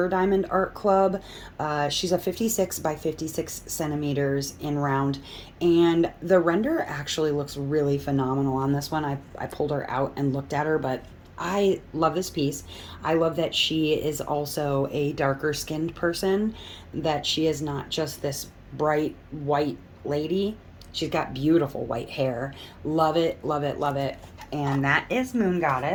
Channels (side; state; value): both; identical; correlation 1.00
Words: Diamond Art Club. She's a 56 by 56 centimeters in round, and the render actually looks really phenomenal on this one. I pulled her out and looked at her, but I love this piece. I love that she is also a darker skinned person, that she is not just this bright white lady. She's got beautiful white hair. Love it, love it, love it. And that is Moon